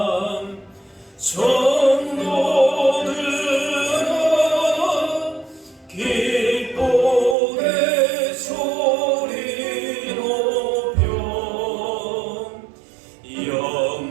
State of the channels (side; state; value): left; drops out; at 7.4 s